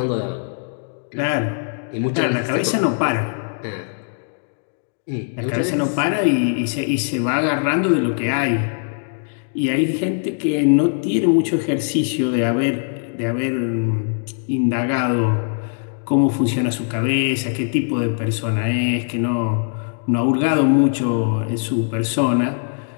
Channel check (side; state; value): right; silent; digital silence